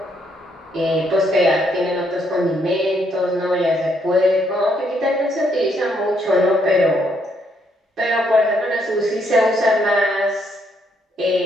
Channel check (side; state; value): both; normal; correlation 0.73